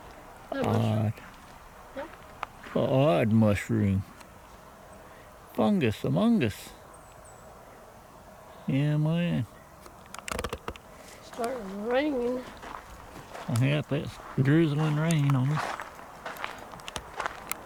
Odd. Odd mushroom. Fungus among us. Yeah, man. Starting raining. Yep, it's drizzling rain on us.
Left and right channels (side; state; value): both; identical; correlation 1.00